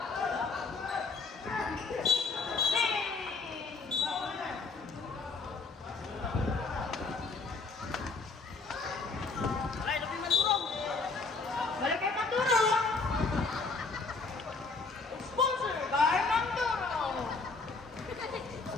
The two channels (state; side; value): quieter; right; 4.1 dB